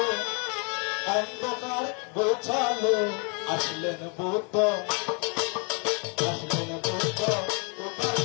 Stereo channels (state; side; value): quieter; right; 36.3 dB